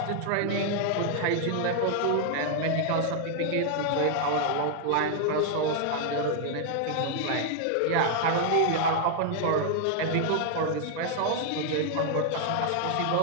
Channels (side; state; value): both; different; correlation 0.00